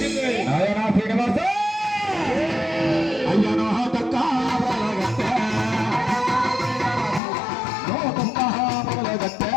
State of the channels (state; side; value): drops out; right; at 7.2 s